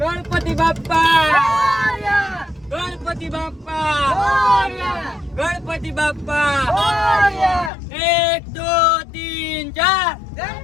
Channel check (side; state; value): right; drops out; at 7.7 s